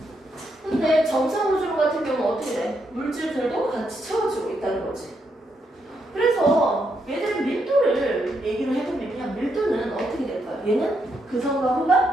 근데 정상 우주론 같은 경우는 어떻게 돼? 물질들도 같이 채워지고 있다는 거지. 그래서 얘들은 밀도를 얘기를 해보면 그냥 밀도는 어떻게 될까요? 얘는 그선과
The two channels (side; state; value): both; normal; correlation 0.79